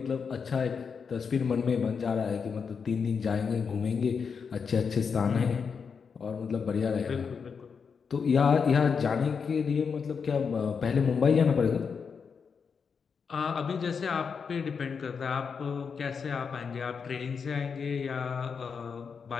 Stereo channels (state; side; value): quieter; right; 6.0 dB